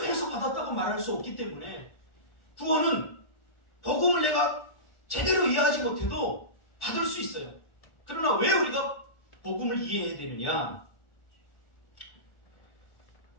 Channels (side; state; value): right; late; 1.4 ms